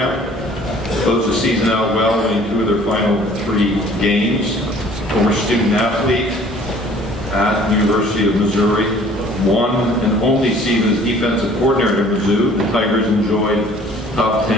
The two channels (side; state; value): both; normal; correlation 0.53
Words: Closed the season out well, winning 2 of their final 3 games. Former student athlete at the University of Missouri. One and only season as defensive coordinator at Mizzou. The Tigers enjoyed top